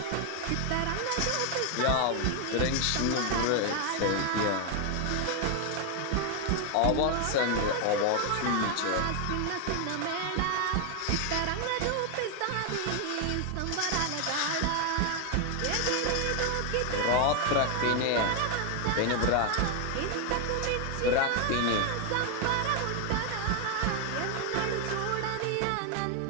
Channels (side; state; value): both; different; correlation 0.00